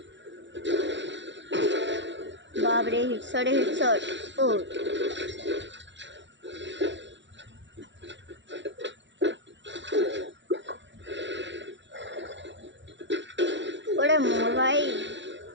বাপরে হিটশটে হিটশট। ও ওরে মোর ভাই,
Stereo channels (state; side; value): late; left; 0.53 ms